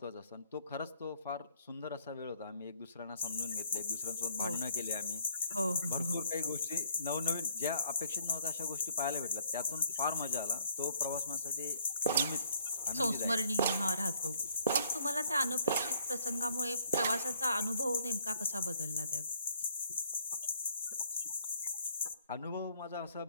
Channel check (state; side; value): inverted; both; correlation -0.65